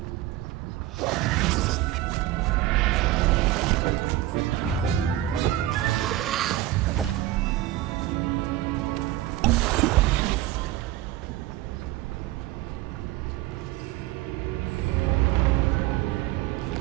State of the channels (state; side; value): quieter; left; 14.8 dB